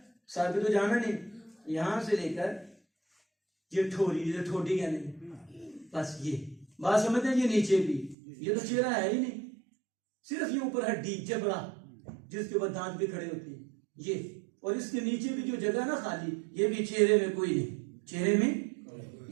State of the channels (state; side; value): drops out; left; at 8.2 s